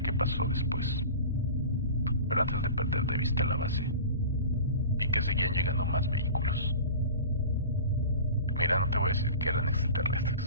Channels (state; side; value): inverted; both; correlation -0.36